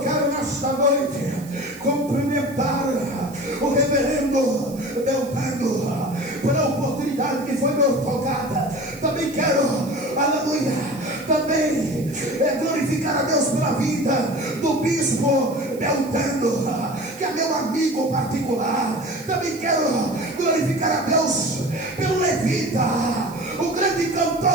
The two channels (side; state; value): right; noise; hiss, 20 dB below the sound